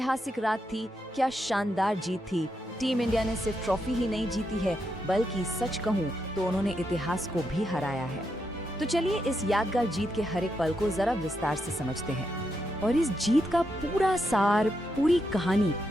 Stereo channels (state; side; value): normal; both; correlation 0.82